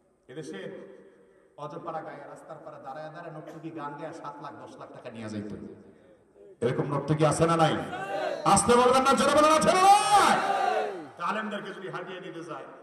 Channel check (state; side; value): identical; both; correlation 1.00